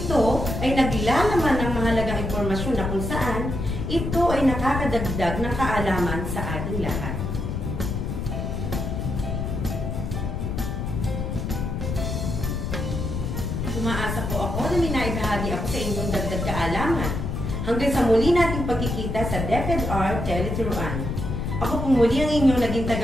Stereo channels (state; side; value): noise; left; rumble, 3 dB below the sound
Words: ay naglalaman ng mahalagang impormasyon na kung saan ito ay nakakadagdag ng kaalaman sa ating lahat. Umaasa po ako na may naibahagi ako sa inyong dagdag kaalaman. Hanggang sa muli nating pagkikita sa DepEdR Teleturuan. Ako po muli ang inyong naging